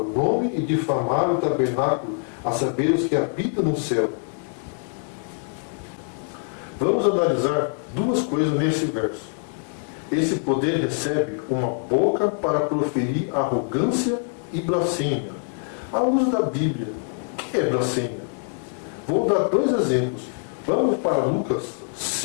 nome e difamar o tabernáculo, a saber os que habitam no céu. Vamos analisar duas coisas nesse verso. Esse poder recebe uma boca para proferir arrogância e blasfêmia. À luz da Bíblia, o que é blasfêmia? Vou dar dois exemplos. Vamos para Lucas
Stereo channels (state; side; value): silent; right; 57 dB below the other